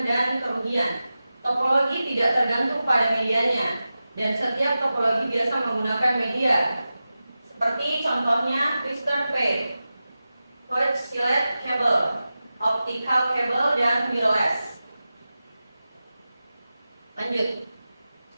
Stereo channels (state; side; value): inverted; both; correlation -0.94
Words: dan kerugian. Topologi tidak tergantung pada medianya, dan setiap topologi biasa menggunakan media, seperti contohnya twister pair, coaxial cable, optical cable, dan wireless. Lanjut.